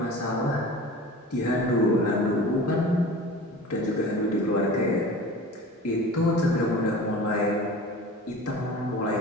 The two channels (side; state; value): both; normal; correlation 0.38